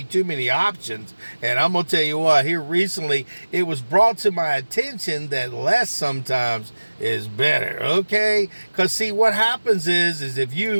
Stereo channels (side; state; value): both; inverted; correlation -1.00